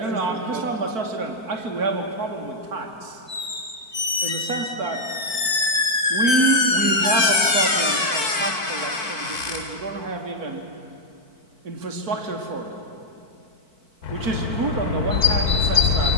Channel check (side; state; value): left; late; 4.5 ms